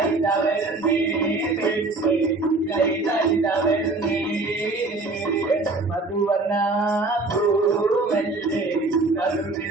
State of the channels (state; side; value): quieter; left; 3.3 dB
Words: പെണ്ണ് ഇതൈതവരുന്നേ മധുവർണ പൂവല്ലേ